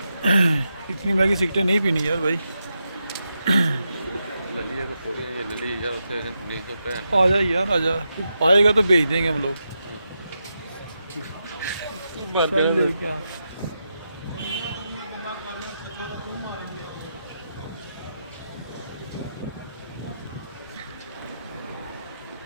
इतनी महंगी सिगटें नहीं पीनी यार भाई। ललिया तो थोड़ी है, ये लली यार उसे नहीं तो पैन आजा यार आजा, तू आएगा तो भेज देंगे हम लोग। चल ले क्या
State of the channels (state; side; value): inverted; both; correlation -0.86